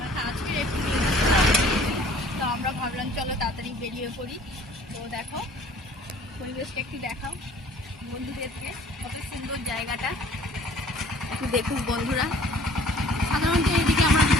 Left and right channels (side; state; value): both; normal; correlation 0.53